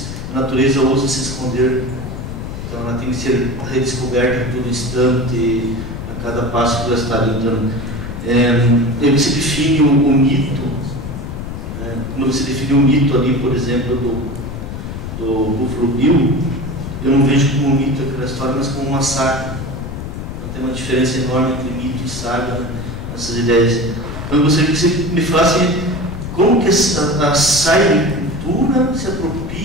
a natureza ousa se esconder, então ela tem que ser redescoberta a todo instante, a cada passo que ela está dando. Aí você define o mito, né? Quando você define o mito ali, por exemplo, do Buffalo Bill, eu não vejo como um mito aquela história, mas como uma saga. Então, tem uma diferença enorme entre mito e saga, né? Essas ideias. Então eu gostaria que você me falasse como que a cybercultura se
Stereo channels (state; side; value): noise; left; rumble, 7 dB below the sound